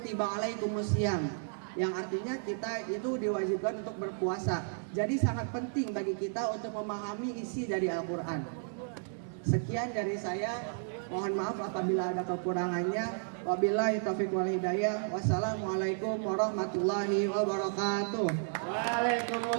alaikumusiyam, yang artinya kita itu diwajibkan untuk berpuasa. Jadi sangat penting bagi kita untuk memahami isi dari Al-Quran. Sekian dari saya, mohon maaf apabila ada kekurangannya. Wabillahi taufiq wal hidayah. Wassalamualaikum warahmatullahi wabarakatuh.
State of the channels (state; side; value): silent; left; digital silence